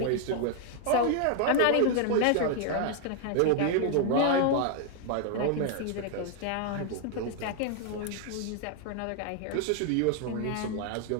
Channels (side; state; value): both; different; correlation 0.00